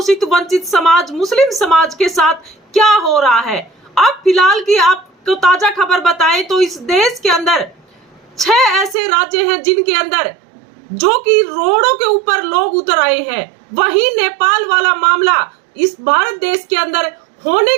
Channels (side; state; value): left; drops out; at 9.0 s